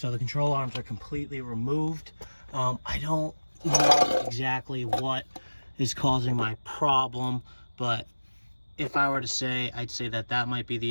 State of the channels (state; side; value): inverted; both; correlation -1.00